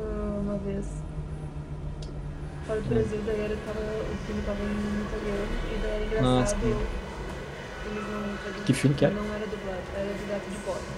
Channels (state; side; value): identical; both; correlation 1.00